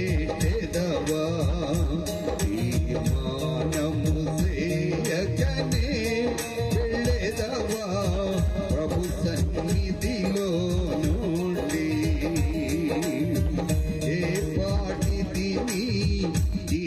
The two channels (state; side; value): identical; both; correlation 1.00